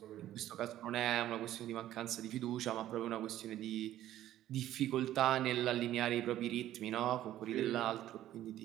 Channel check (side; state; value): left; quieter; 13.1 dB